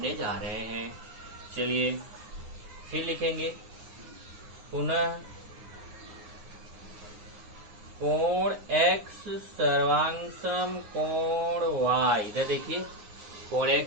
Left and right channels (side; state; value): left; late; 9.7 ms